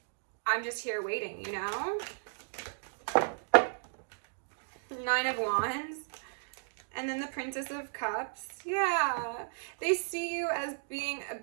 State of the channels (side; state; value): left; silent; digital silence